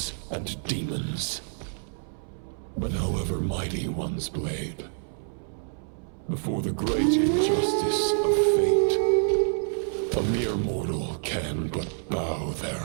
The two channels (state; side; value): silent; left; 59 dB below the other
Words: and demons. But however mighty one's blade, before the great injustice of fate, a mere mortal can but bow their